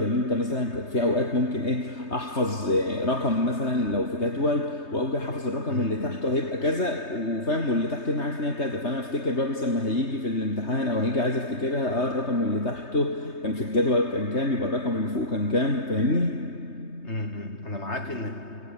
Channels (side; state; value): right; late; 3.2 ms